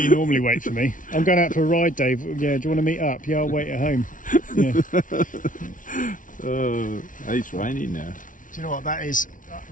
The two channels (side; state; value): right; late; 0.38 ms